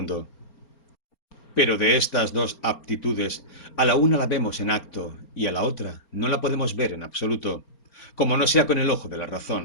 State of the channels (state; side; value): late; right; 4.4 ms